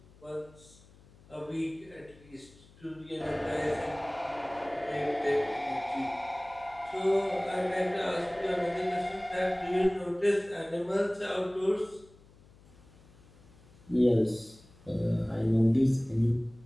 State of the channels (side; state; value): left; noise; hum, 25 dB below the sound